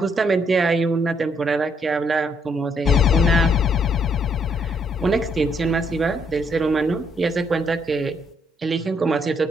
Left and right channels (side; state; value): both; normal; correlation 0.71